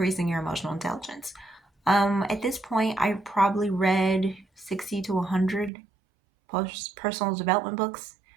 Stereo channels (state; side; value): drops out; left; at 5.7 s